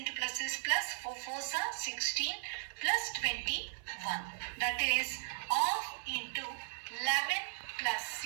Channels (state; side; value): silent; left; 53 dB below the other